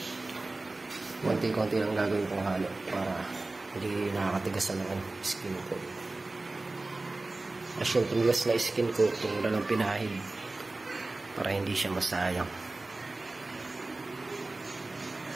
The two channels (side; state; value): left; quieter; 3.1 dB